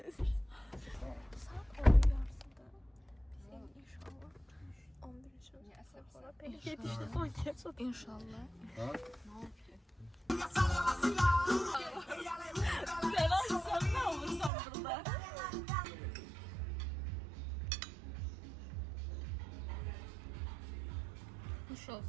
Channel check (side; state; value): left; drops out; at 14.5 s